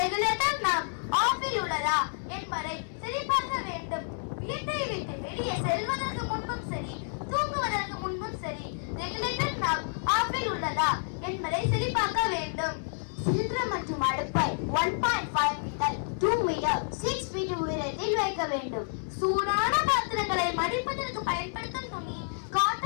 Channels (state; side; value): silent; right; 58 dB below the other